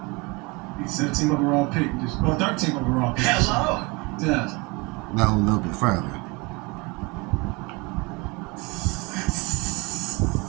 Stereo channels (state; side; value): quieter; left; 26.9 dB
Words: 17th overall pick. 13th overall pick. Hello. Yeah. No, a little bit further.